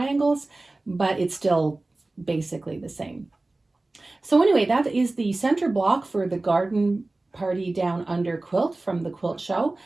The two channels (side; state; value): left; quieter; 3.0 dB